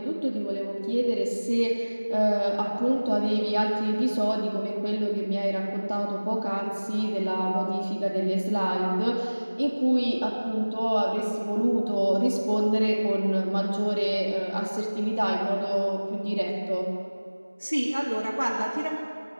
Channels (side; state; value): both; inverted; correlation -1.00